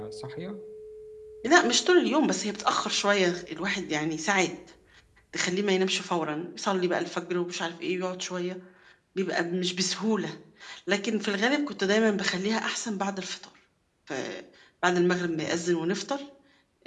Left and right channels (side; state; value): both; identical; correlation 1.00